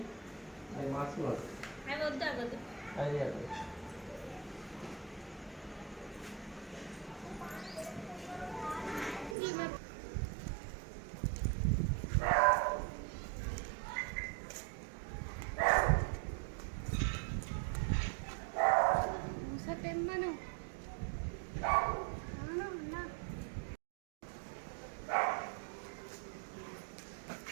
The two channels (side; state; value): left; drops out; at 9.3 s